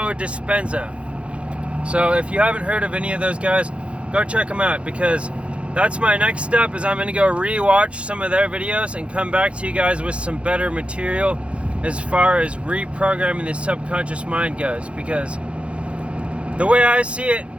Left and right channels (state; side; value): late; left; 0.060 ms